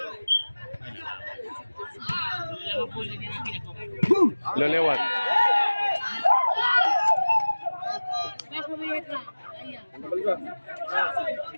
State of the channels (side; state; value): both; inverted; correlation -1.00